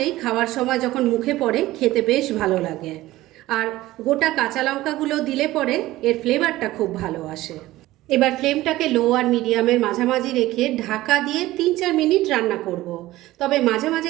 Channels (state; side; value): quieter; left; 16.8 dB